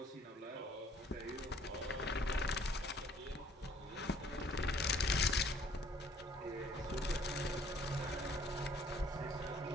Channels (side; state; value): both; normal; correlation 0.60